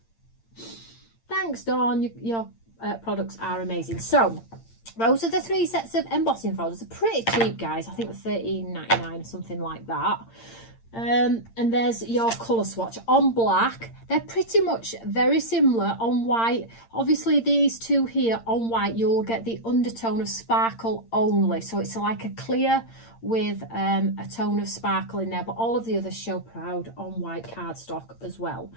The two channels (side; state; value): right; late; 8.8 ms